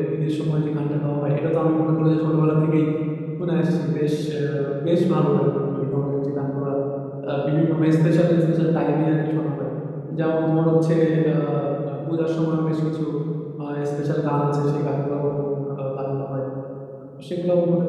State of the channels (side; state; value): both; identical; correlation 1.00